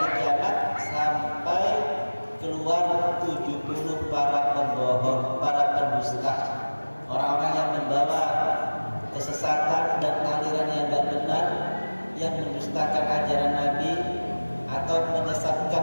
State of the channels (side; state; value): both; inverted; correlation -1.00